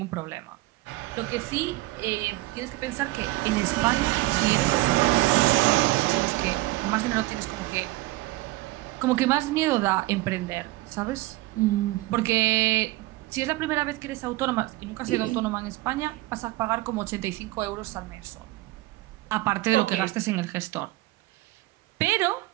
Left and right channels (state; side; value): quieter; left; 19.2 dB